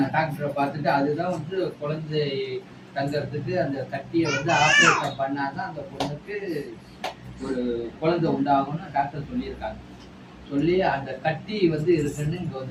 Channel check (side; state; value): both; identical; correlation 1.00